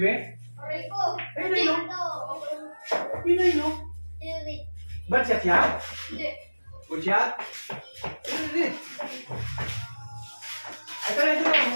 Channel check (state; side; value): inverted; both; correlation -1.00